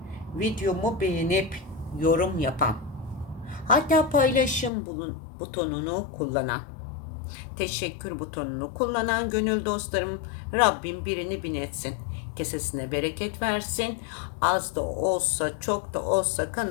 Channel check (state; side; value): drops out; right; at 4.7 s